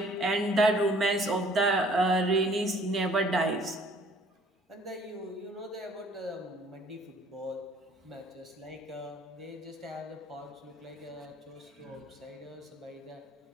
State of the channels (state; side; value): normal; both; correlation 0.57